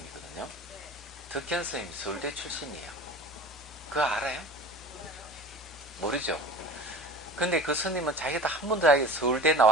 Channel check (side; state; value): both; normal; correlation 0.38